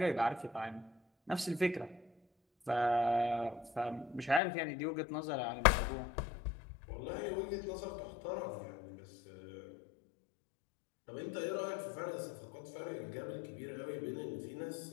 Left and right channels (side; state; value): right; drops out; at 4.4 s